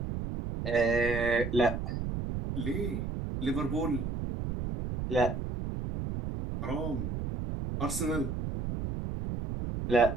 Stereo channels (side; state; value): right; noise; rumble, 4 dB below the sound